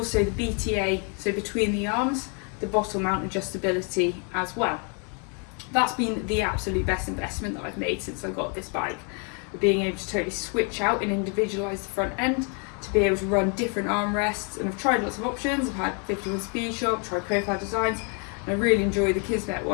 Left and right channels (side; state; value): right; quieter; 37.8 dB